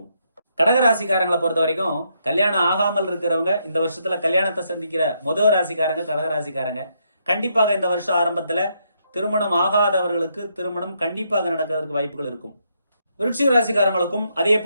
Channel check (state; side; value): inverted; both; correlation -0.76